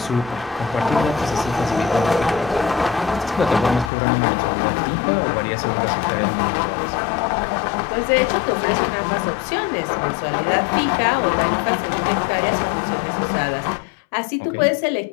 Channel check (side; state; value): right; drops out; at 3.9 s